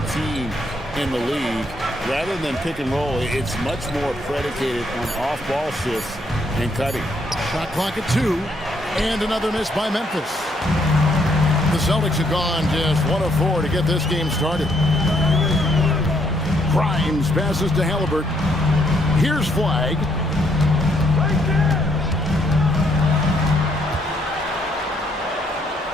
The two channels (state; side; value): normal; both; correlation 0.71